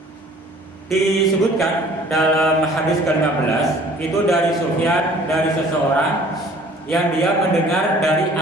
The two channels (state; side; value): normal; both; correlation 0.52